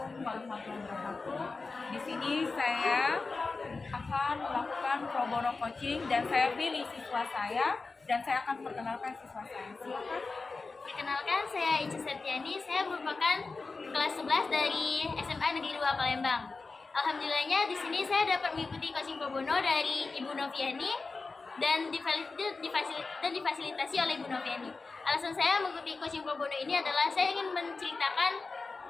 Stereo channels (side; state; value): right; quieter; 4.0 dB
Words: warahmatullahi wabarakatuh. Di sini saya akan melakukan pro bono coaching dan saya pilih siswa saya dan saya akan perkenalkan siswa saya. Silakan. Perkenalkan, saya Ica Septiani. Saya merupakan kelas 11 dari SMA Negeri 2 Palembang. Alhamdulillahnya di sini saya dapat mengikuti coaching pro bono dari Ibu Noviani dan difasilitasi oleh Ibu Noviani. Alasan saya mengikuti coaching pro bono ini adalah saya ingin menceritakan